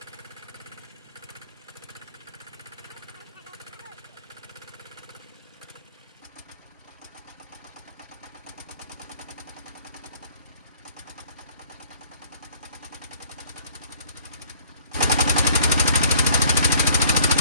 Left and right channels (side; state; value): both; inverted; correlation -0.54